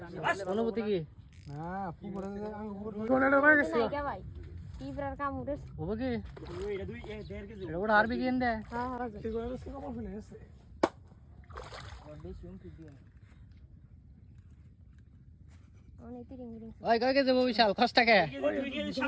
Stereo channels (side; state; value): both; identical; correlation 1.00